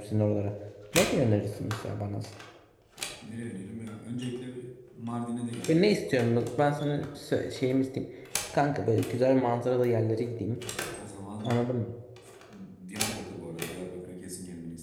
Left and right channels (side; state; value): both; identical; correlation 1.00